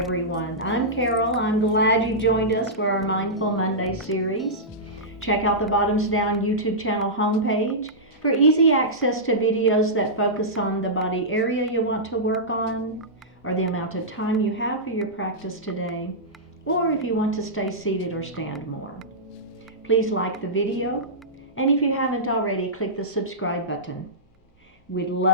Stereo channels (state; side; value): normal; both; correlation -0.15